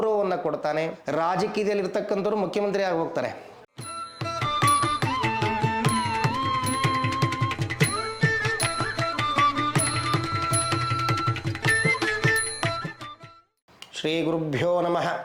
ಕೊಡ್ತಾನೆ. ರಾಜಕೀಯದಲ್ಲಿ ಇರ್ತಕ್ಕಂಥವ್ರು ಮುಖ್ಯಮಂತ್ರಿ ಆಗಿ ಹೋಗ್ತಾರೆ. ಶ್ರೀ ಗುರುಭ್ಯೋ ನಮಃ.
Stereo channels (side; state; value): both; identical; correlation 1.00